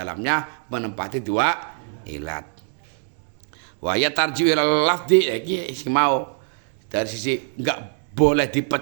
menempati dua ilat. Wa ya tarji'u ilal lafzi, iki mau dari sisi enggak boleh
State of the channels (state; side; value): silent; left; 56 dB below the other